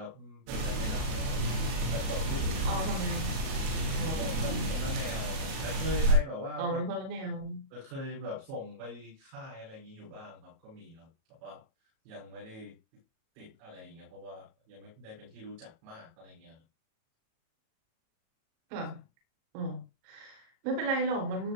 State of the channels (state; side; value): late; left; 37 ms